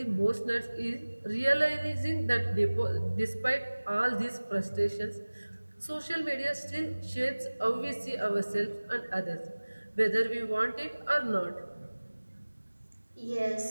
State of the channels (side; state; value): both; inverted; correlation -1.00